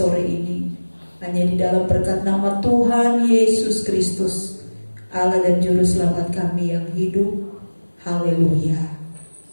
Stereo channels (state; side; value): inverted; both; correlation -1.00